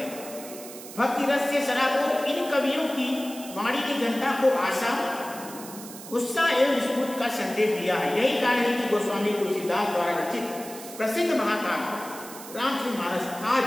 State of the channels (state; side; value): noise; right; hiss, 14 dB below the sound